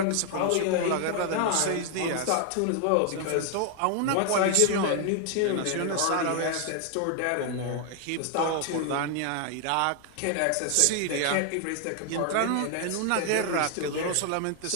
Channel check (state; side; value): different; both; correlation 0.00